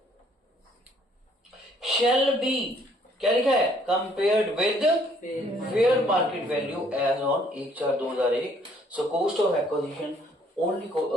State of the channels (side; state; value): both; normal; correlation 0.63